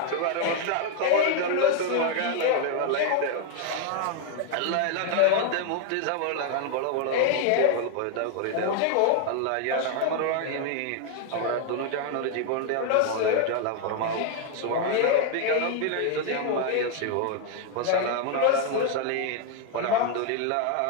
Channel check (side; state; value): both; different; correlation 0.00